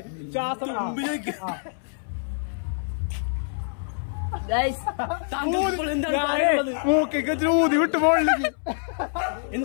ശ്വാസം മുമ്പിലേക്ക്. മൂക്കൊക്കെ ഊതി വിട്ട് പോളിലേക്ക്.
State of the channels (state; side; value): silent; right; 61 dB below the other